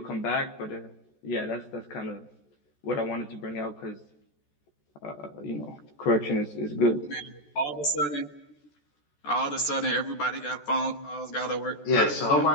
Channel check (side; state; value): right; late; 14 ms